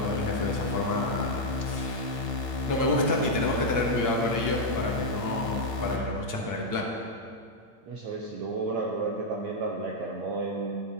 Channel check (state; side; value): late; left; 8.7 ms